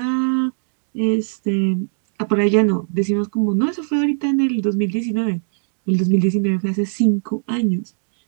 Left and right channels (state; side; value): silent; left; digital silence